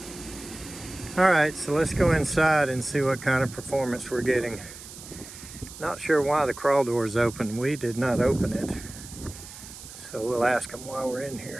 All right, so let's go inside and see what kind of performance we're getting. Not sure why the crawl door is open. We did not open it. So we'll ask them while we're in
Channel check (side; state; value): right; noise; hiss, 15 dB below the sound